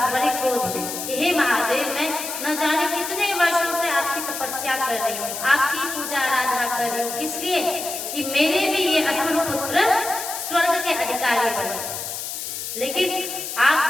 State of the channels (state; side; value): noise; left; hiss, 6 dB below the sound